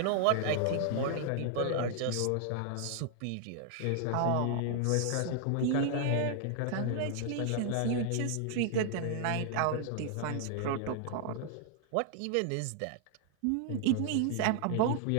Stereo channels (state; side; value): different; both; correlation 0.00